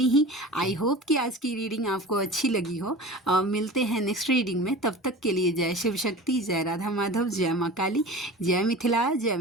ही। आई होप कि आज की रीडिंग आपको अच्छी लगी हो। मिलते हैं नेक्स्ट रीडिंग में, तब तक के लिए जय शिव शक्ति, जय राधा माधव, जय माँ काली, जय मिथिला, जय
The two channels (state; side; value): normal; both; correlation 0.36